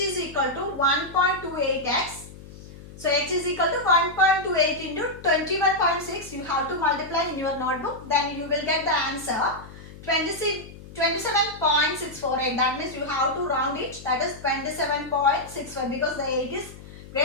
equal to 1.28x. So h is equal to 1.28 into 21.6. You have to multiply in your notebook. Then you will get the answer 27.648. That means you have to round it. That is 27.65 because the 8 is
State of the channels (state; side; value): noise; left; hum, 17 dB below the sound